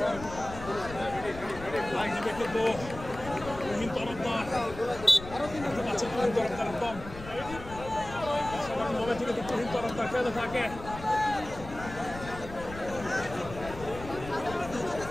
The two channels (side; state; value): left; noise; rumble, 13 dB below the sound